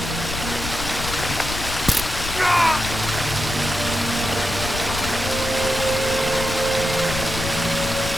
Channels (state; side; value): noise; left; rumble, 7 dB below the sound